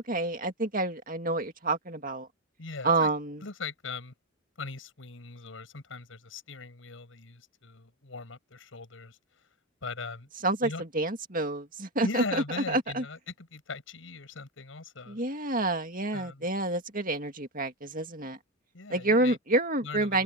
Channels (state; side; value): normal; both; correlation 0.08